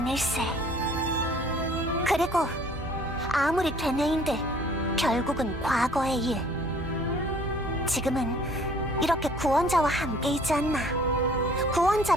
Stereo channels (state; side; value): normal; both; correlation 0.55